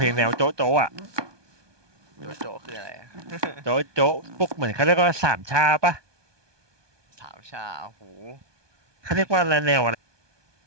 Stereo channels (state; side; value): late; left; 1.2 ms